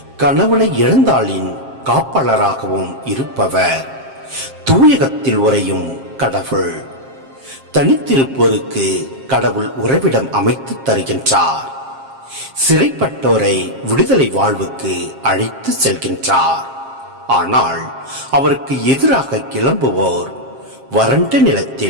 கணவனை இழந்தாளின் காப்பாளராகவும் இருப்பவர். தூயகத்தில் உறையும் கடவுள். தனித்திருப்போருக்கு கடவுள் உறைவிடம் அமைத்து தருகின்றார். சிறைப்பட்டோரை விடுதலை வாழ்வுக்கு அழைத்து செல்கின்றார். ஆனால் அவருக்கு எதிராக கிளம்புவோர் வறண்ட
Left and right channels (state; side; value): late; left; 7.5 ms